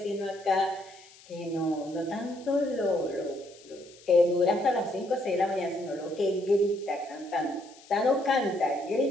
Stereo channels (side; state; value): left; noise; hiss, 23 dB below the sound